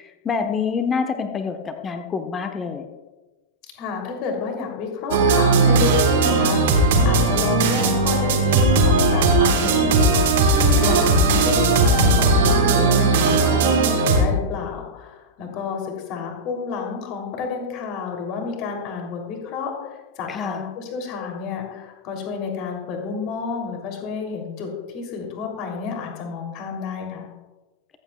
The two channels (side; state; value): both; normal; correlation -0.13